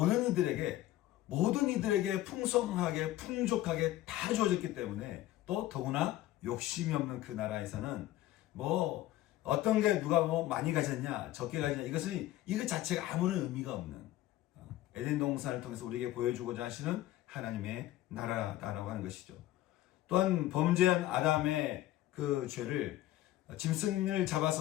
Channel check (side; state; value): right; quieter; 14.9 dB